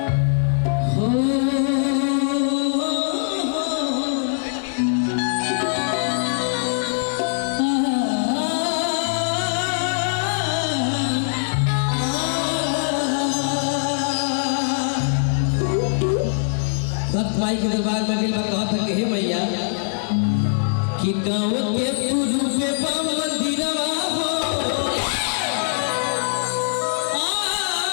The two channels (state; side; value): silent; right; digital silence